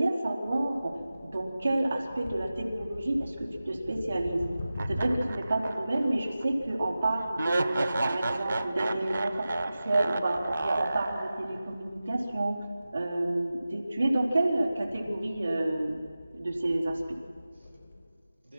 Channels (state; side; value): inverted; both; correlation -0.95